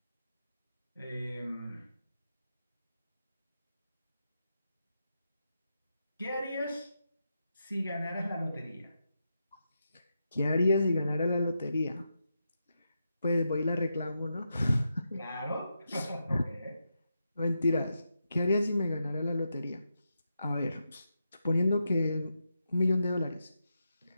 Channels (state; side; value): inverted; both; correlation -0.86